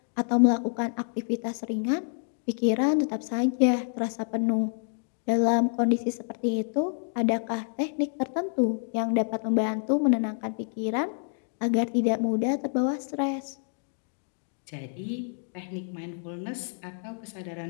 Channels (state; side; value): silent; right; 59 dB below the other